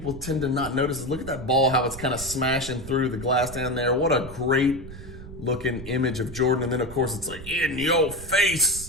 tend to not notice is look at that ball, how it's kind of smashing through the glass down there. What a great looking image of Jordan. And then of course it's like in your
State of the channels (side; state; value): right; noise; rumble, 13 dB below the sound